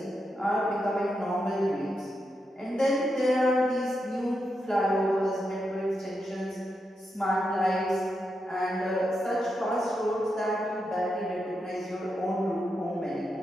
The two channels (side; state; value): both; normal; correlation 0.85